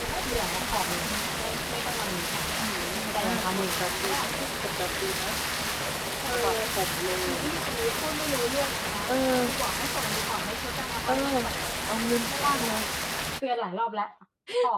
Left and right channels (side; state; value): both; identical; correlation 1.00